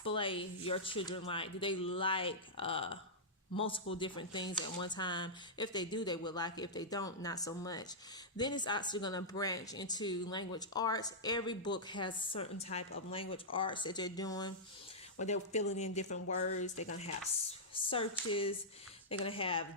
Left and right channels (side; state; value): both; normal; correlation -0.11